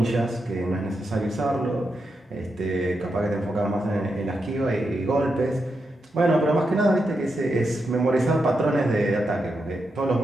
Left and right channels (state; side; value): normal; both; correlation 0.85